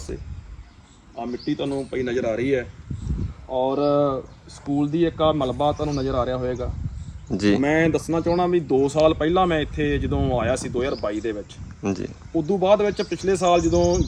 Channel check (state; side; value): identical; both; correlation 1.00